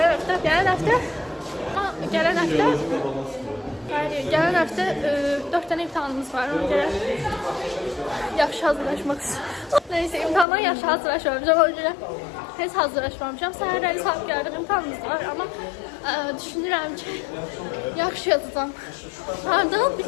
həftə 4 dənə imtahanımız var. Ona görə yaxşı hazırlaşmaq istəyirəm. Neyse, imtahandan yaxşı hazırlaşmamışam. Ona görə heç hazırlaşmamışam. Səhərləri saat gəldik, imtahanımız var. Amma düşünürəm ki, yaxşı yazacağam. Hardan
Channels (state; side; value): drops out; right; at 10.5 s